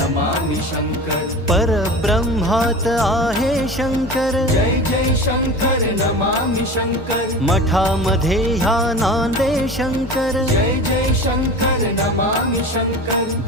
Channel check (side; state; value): both; normal; correlation 0.33